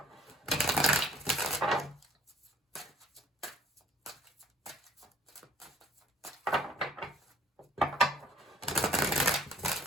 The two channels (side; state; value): both; normal; correlation 0.56